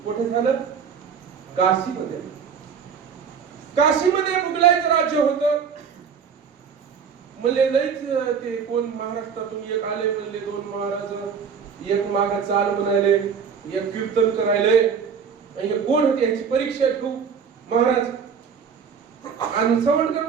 कुठे झालं? काशीमध्ये. काशीमध्ये मुघलांचं राज्य होतं. म्हणले लईच ते कोण महाराष्ट्रातून एक आले, म्हणले दोन महाराज, एक माग चाल म्हणायले, एक कीर्तन करायले. आणि कोण होते याची परीक्षा घेऊ महाराज. आणि सवणकर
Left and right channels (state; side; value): quieter; left; 6.6 dB